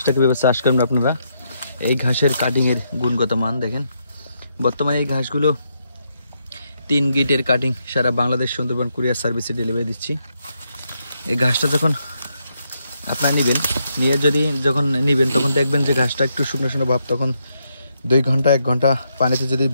কীভাবে চাষ করবেন আপনারা। এই ঘাসের কাটিংয়ের গুণগত মান দেখেন। বর্তমানে এই ঘাসগুলো 3 গিটের কাটিং সারা বাংলাদেশ সুন্দরবন কুরিয়ার সার্ভিসে ডেলিভারি দিচ্ছি। এই ঘাসটা যখন আপনারা যখন নেবেন তখন দেখবেন যে ঘাসটা একটু শুকনো শুকনো ভাব, তখন 2 ঘন্টা 1 ঘন্টা পানিতে যদি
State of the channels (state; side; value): inverted; both; correlation -0.79